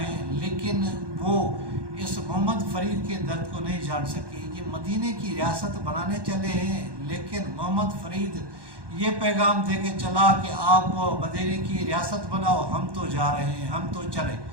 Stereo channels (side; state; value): left; late; 1.1 ms